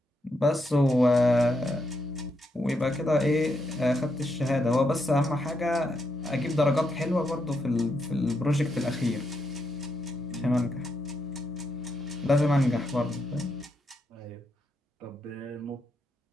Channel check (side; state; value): both; normal; correlation 0.80